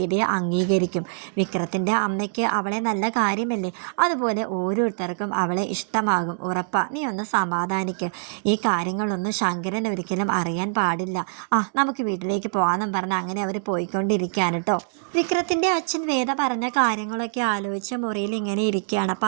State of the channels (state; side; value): silent; left; digital silence